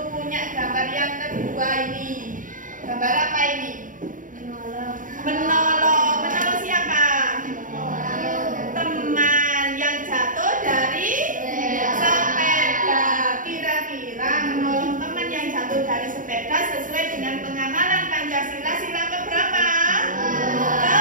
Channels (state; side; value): late; left; 0.39 ms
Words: punya gambar yang kedua ini. Gambar apa ini? Menolong. Menolong siapa? Teman yang jatuh dari sepeda. Kira-kira menolong teman yang jatuh dari sepeda sesuai dengan pengamalan Pancasila sila keberapa?